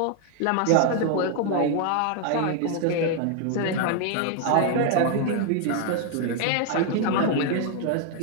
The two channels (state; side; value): different; both; correlation 0.00